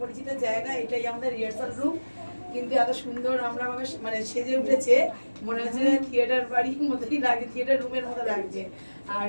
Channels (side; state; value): both; inverted; correlation -1.00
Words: পরিচিত জায়গা, এটাই আমাদের রিহার্সাল রুম। কিন্তু এত সুন্দর আমরা মানে সেজে উঠেছে, মনে হচ্ছে থিয়েটার বাড়ির মতোই লাগে, থিয়েটার রুমের মতো লাগছে। আর